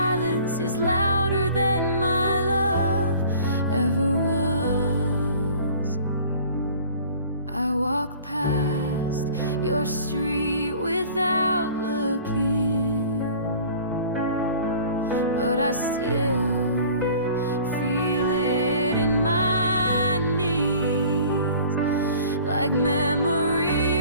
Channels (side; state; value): both; inverted; correlation -0.48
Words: is louder than my love ever was. I walk past your street without looking, but I still feel it in my knees, like